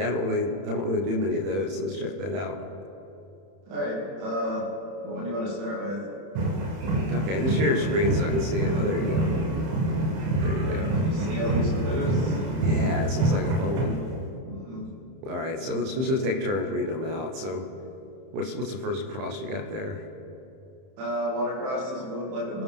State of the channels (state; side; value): late; left; 31 ms